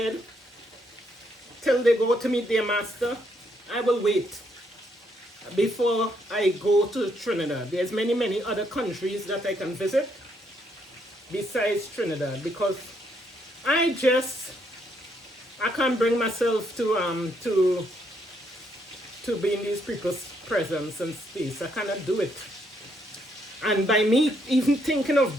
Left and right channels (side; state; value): both; normal; correlation 0.73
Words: till they go to meet their master. I will wait before I go to Trinidad. There's many other countries that I can visit besides Trinidad because I can't bring myself to be in these people's presence and space. I cannot do it. And by me even thinking of